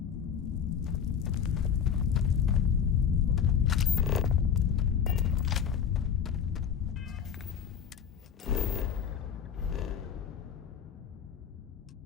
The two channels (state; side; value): quieter; right; 7.8 dB